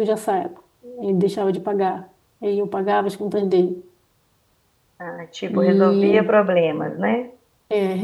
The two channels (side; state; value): both; identical; correlation 1.00